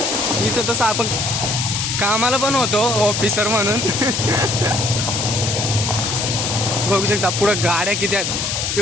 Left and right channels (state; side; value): noise; left; hiss, 1 dB below the sound